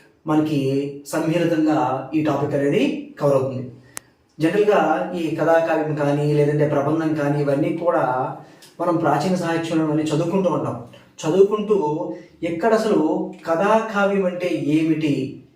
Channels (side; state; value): both; identical; correlation 1.00